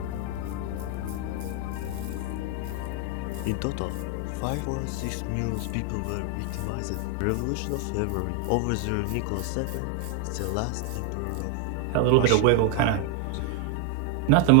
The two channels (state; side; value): different; both; correlation 0.01